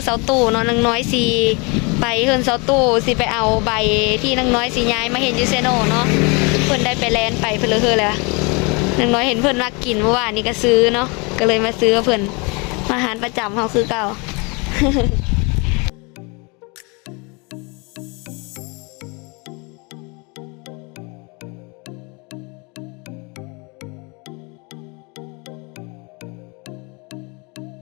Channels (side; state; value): right; quieter; 29.9 dB